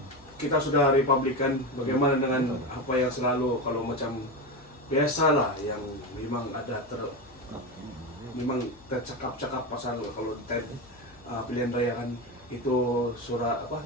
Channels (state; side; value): noise; left; hum, 27 dB below the sound